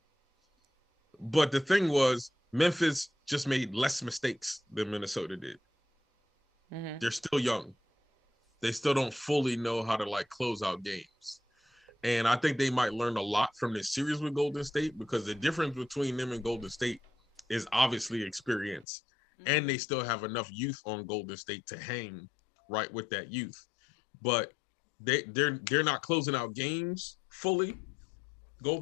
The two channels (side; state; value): right; drops out; at 18.9 s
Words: But the thing was, Memphis just made less mistakes than Minnesota did. Mm-hmm. They're still young. They still don't fully know how to close out games. And I think they might learn a lot from this series with Golden State because the difference between them and Golden State is obviously experience. Mm-hmm. And they still have enough youth on Golden State to hang right with that youth. But they're not closing out games fully,